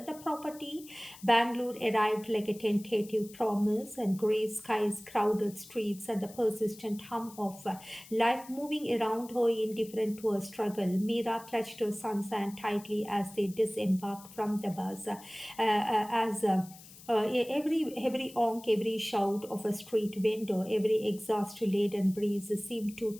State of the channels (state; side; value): noise; left; hiss, 19 dB below the sound